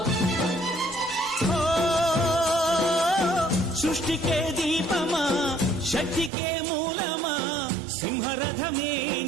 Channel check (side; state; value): left; drops out; at 6.3 s